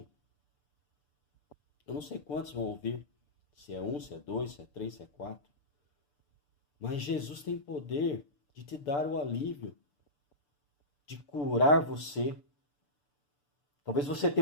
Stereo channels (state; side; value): late; right; 6.9 ms